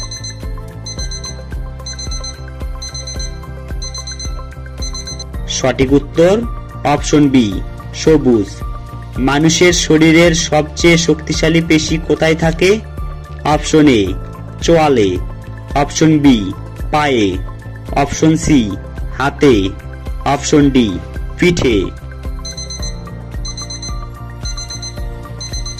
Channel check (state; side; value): identical; both; correlation 1.00